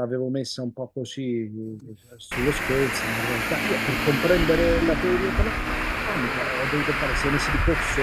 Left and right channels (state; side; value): identical; both; correlation 1.00